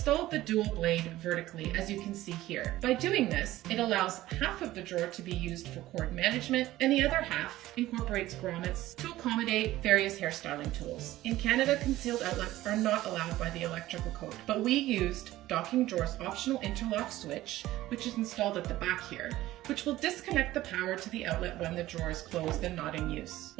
the dual blade vertically, as you can see here. By doing this, it allows half of the drawer to be used for cord management, and the other half incorporates grommets to accommodate various hairstyling tools. In Canada, concealed outlets are not allowed by the electrical code, but we used docking drawer's optional interlock switch, which is installed at the back here, which will disconnect the power to the outlet when the drawer is closed and not in use.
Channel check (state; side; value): quieter; left; 15.8 dB